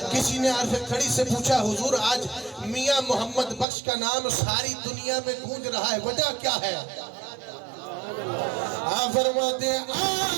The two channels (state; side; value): drops out; left; at 3.7 s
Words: کسی نے عارف کھڑی سے پوچھا حضور آج میاں محمد بخش کا نام ساری دنیا میں گونج رہا ہے، وجہ کیا ہے؟ آپ فرماتے ہیں